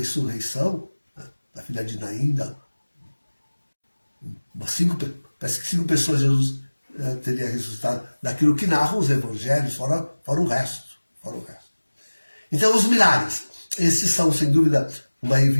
da filha de Naim, parece que 5 pessoas Jesus teria ressuscitado, daquilo que narram os evangelhos, fora o resto. Então, os milagres, esses são, sem dúvida, uma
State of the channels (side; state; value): both; inverted; correlation -1.00